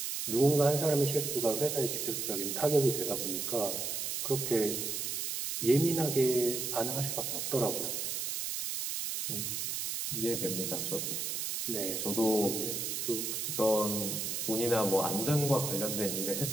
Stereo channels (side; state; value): right; noise; hiss, 2 dB below the sound